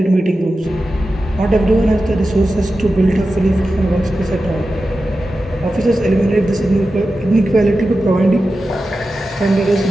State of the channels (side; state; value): both; normal; correlation 0.92